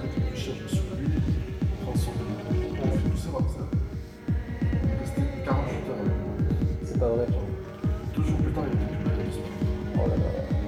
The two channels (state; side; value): identical; both; correlation 1.00